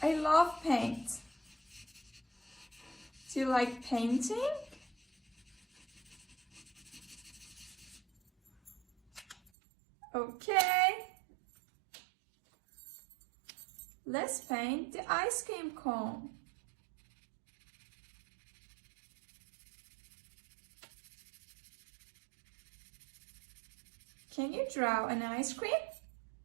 I love paint. Do you like painting? Okay. Let's paint the ice cream cone. Can you draw an ice cream?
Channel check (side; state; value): left; drops out; at 9.5 s